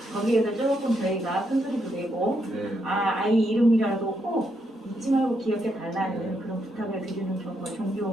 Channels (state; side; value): normal; both; correlation 0.79